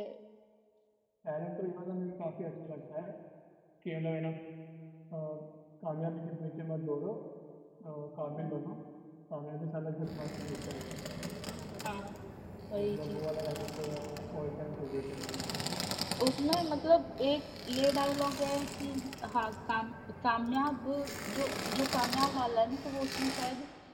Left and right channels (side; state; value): both; identical; correlation 1.00